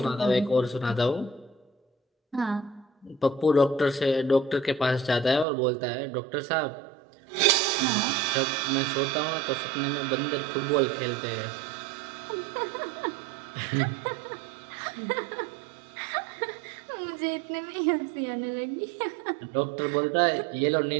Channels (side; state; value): left; drops out; at 5.5 s